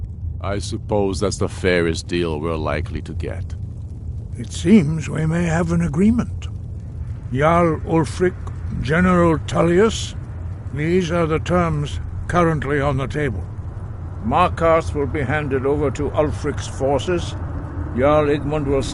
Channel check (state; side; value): identical; both; correlation 1.00